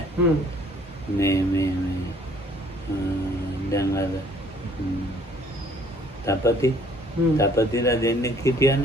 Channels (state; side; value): normal; both; correlation 0.59